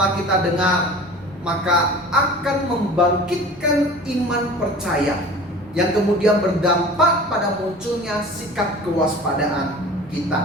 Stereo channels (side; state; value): both; normal; correlation 0.40